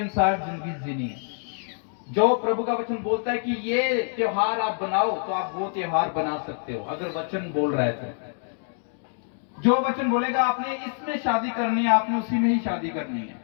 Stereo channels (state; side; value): silent; right; 61 dB below the other